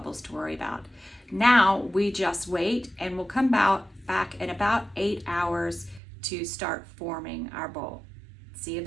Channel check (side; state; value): left; drops out; at 6.0 s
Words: to worry about. Now we just wait, and we'll come back in about 8 hours to start forming our bowl. See you